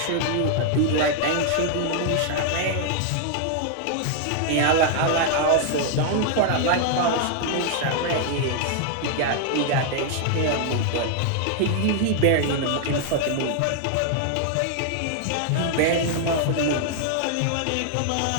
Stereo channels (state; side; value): different; both; correlation 0.00